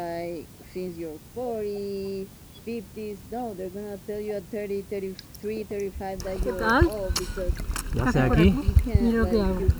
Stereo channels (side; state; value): both; identical; correlation 1.00